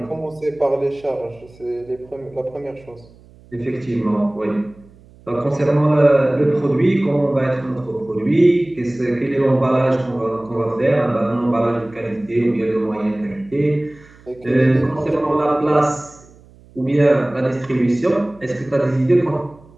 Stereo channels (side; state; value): right; noise; hum, 25 dB below the sound